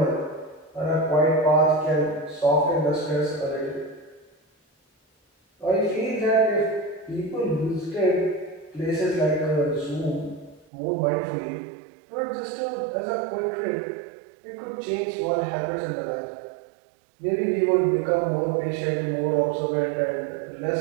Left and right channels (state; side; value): drops out; left; at 10.7 s